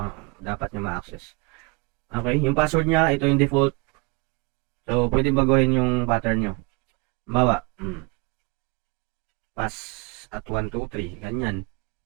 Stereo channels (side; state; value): left; quieter; 27.8 dB